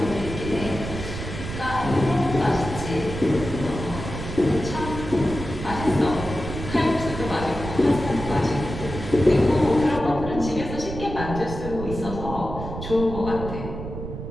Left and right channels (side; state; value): right; noise; rumble, 8 dB below the sound